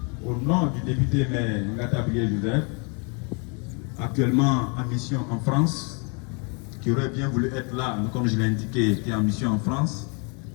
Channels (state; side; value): quieter; right; 35.1 dB